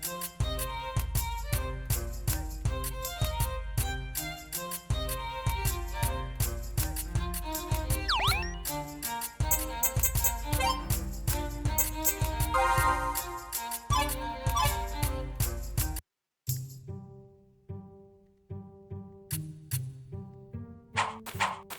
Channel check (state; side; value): identical; both; correlation 1.00